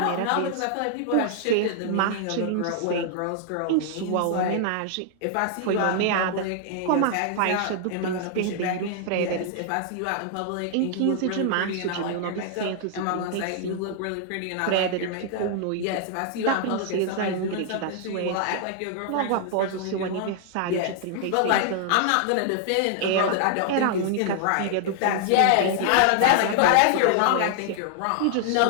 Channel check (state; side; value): different; both; correlation 0.00